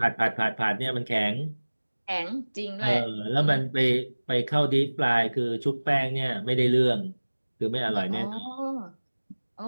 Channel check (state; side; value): inverted; both; correlation -1.00